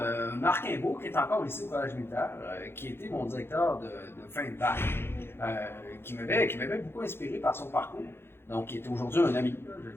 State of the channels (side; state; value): right; late; 0.11 ms